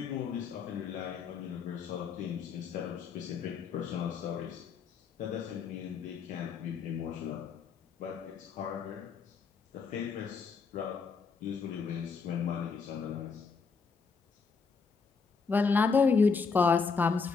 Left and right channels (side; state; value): right; quieter; 5.2 dB